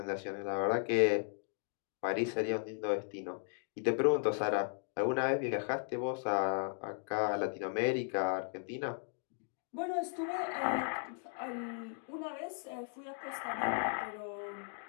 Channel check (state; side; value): silent; right; 53 dB below the other